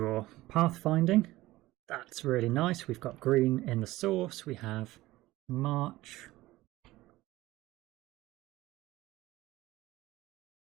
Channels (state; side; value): quieter; left; 17.8 dB